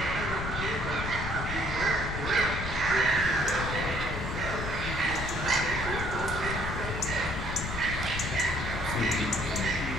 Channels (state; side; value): noise; left; rumble, 5 dB below the sound